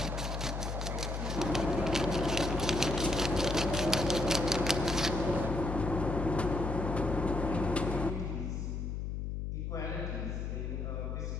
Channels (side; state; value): left; noise; hum, 3 dB below the sound